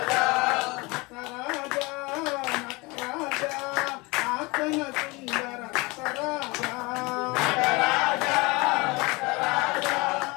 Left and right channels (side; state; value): right; quieter; 25.1 dB